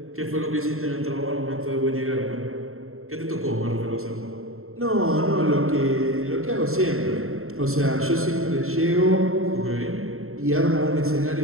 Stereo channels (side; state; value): left; late; 0.62 ms